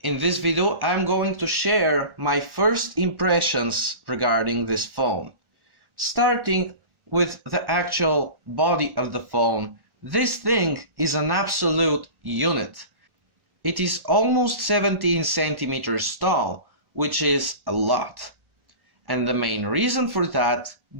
In this video, I'm going to share my first impressions regarding this phone. Starting with the actual body of the phone, this thing is an absolute unit. It is almost 17 centimeters tall, which is a lot. And the main reason for that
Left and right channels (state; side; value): late; left; 1.1 ms